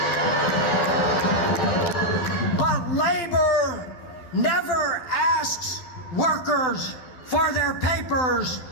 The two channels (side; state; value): right; late; 12 ms